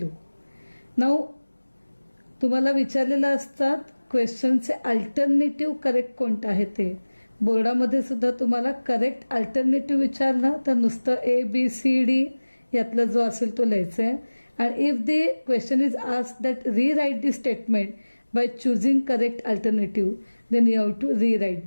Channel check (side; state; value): both; inverted; correlation -1.00